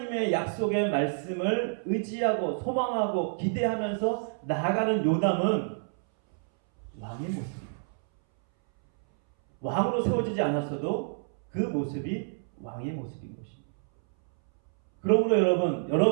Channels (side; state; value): left; silent; 59 dB below the other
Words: 약속의 말씀을 의지하고 소망하고 기대하면서 나아가는 요담은 왕의 모습입니다. 왕으로 세워지지 않았어도 그 모습이 왕의 모습인 것입니다. 그러므로